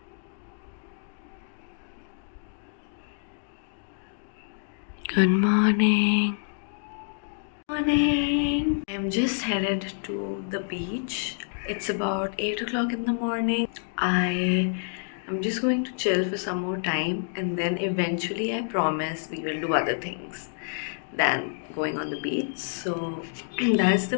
Good morning. Morning. I'm just headed to the beach. It's about 8 o'clock in the morning. I'm just going to chill for some more time, and then eventually I promise we will do other things than going on the beach. So that's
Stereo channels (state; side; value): silent; right; digital silence